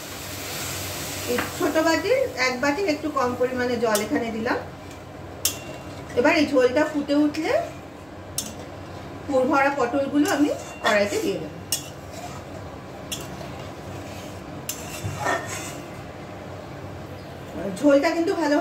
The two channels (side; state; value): right; noise; rumble, 29 dB below the sound